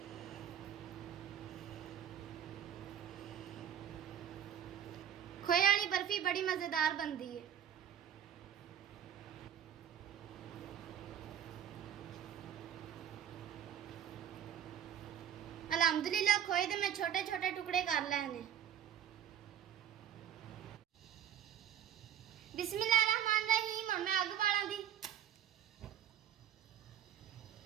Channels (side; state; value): left; quieter; 9.8 dB